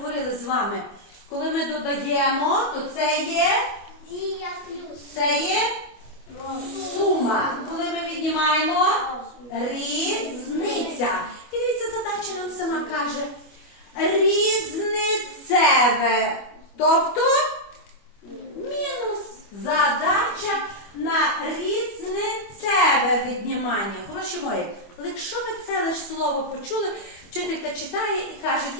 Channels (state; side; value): late; right; 25 ms